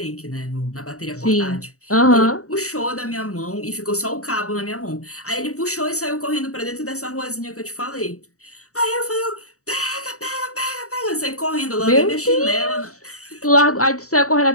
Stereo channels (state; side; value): late; right; 0.65 ms